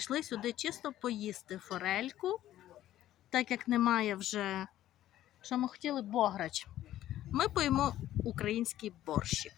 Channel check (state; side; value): quieter; right; 13.2 dB